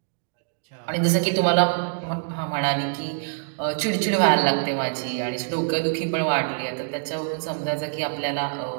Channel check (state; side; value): silent; left; digital silence